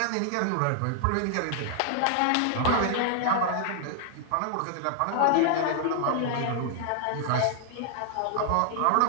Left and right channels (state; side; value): different; both; correlation 0.00